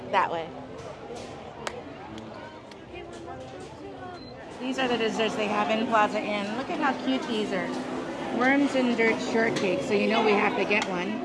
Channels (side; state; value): both; identical; correlation 1.00